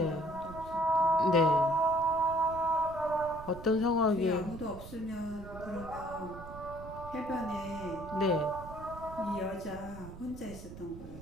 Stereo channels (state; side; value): noise; right; rumble, 14 dB below the sound